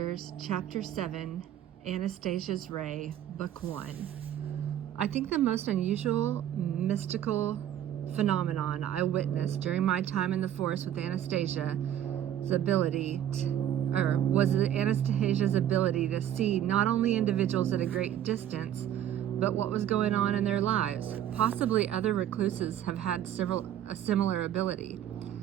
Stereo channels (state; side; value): quieter; left; 10.9 dB